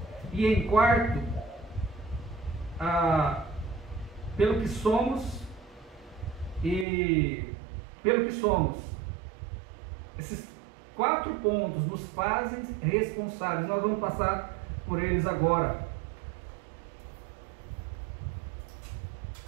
E em quarto, pelo que somos e pelo que somos. Esses 4 pontos nos fazem responsáveis. Nós vamos passar por eles agora.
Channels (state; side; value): drops out; left; at 6.9 s